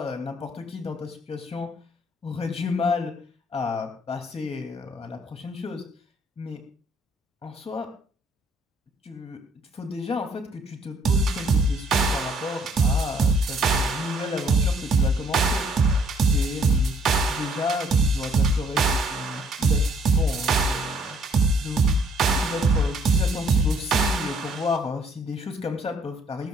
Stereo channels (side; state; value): both; normal; correlation 0.64